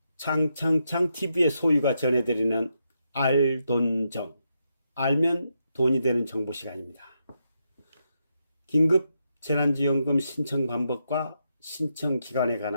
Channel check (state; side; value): inverted; both; correlation -0.82